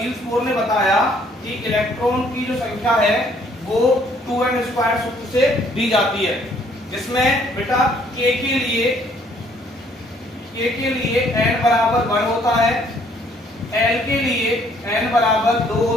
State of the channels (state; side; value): normal; both; correlation 0.63